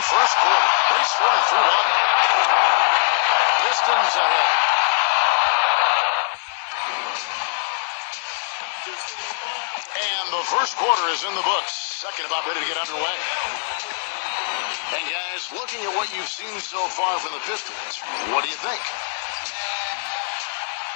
quarter. They scoring 3-1. Pistons ahead. And the first quarter is in the books. Second about ready to get underway. And guys, looking at what you've seen so far from the Pistons, what do you think?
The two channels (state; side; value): silent; right; 57 dB below the other